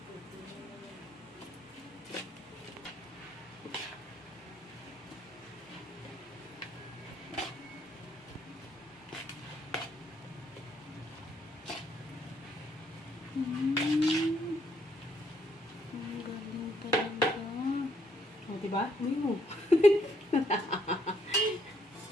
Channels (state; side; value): normal; both; correlation 0.71